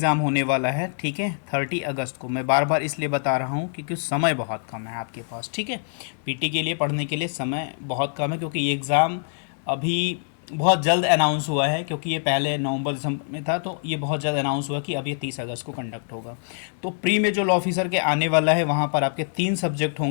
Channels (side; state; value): right; silent; digital silence